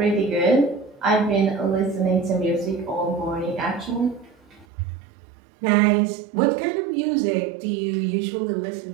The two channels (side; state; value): left; drops out; at 4.7 s